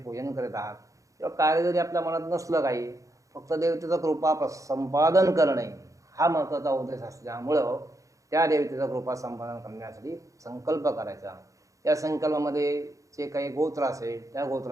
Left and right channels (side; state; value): left; late; 0.16 ms